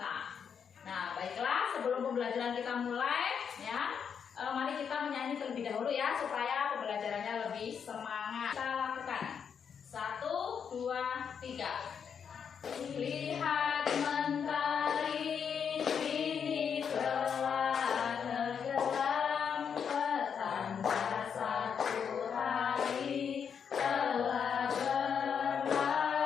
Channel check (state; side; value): quieter; right; 7.2 dB